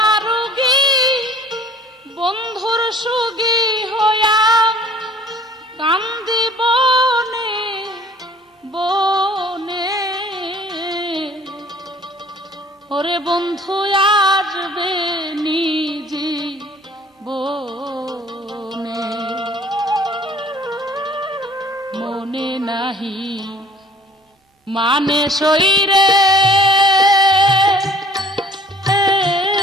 বন্ধুর সুগী হইয়া কান্দি বনে বনে ওরে বন্ধু আসবে নিজি বনে মনে নাহি মানে শরীরে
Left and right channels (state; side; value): normal; both; correlation 0.53